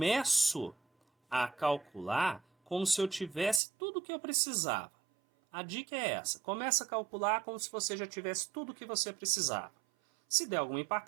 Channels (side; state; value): left; drops out; at 3.6 s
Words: a calcular como se eu tivesse tudo o que eu precisava. A dica é essa. Começa a calcular como se você já tivesse tudo o que você precisava. Se der alguma